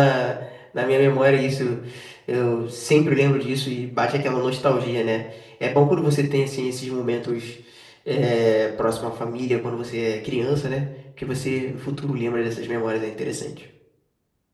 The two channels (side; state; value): both; identical; correlation 1.00